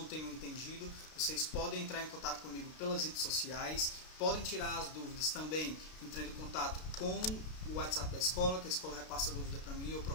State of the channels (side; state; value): right; late; 32 ms